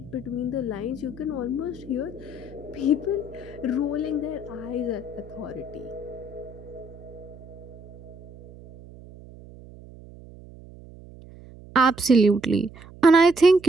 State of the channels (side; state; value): right; noise; hum, 19 dB below the sound